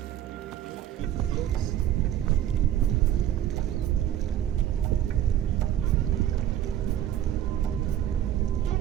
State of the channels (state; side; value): quieter; left; 11.5 dB